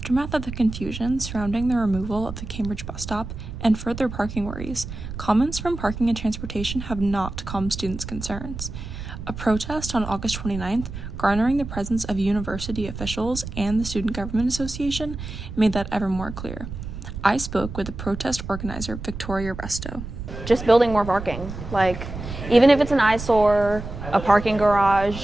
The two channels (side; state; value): right; noise; rumble, 9 dB below the sound